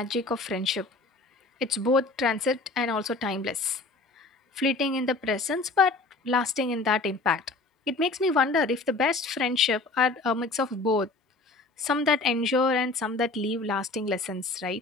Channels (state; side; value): quieter; right; 3.4 dB